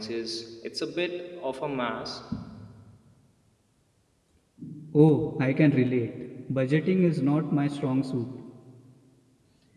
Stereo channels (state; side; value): identical; both; correlation 1.00